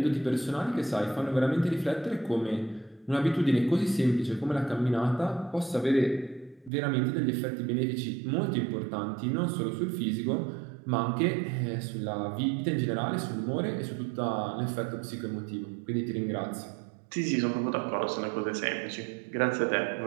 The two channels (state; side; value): drops out; left; at 6.7 s